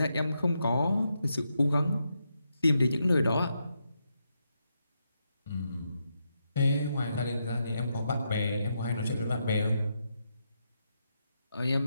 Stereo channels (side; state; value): both; inverted; correlation -0.82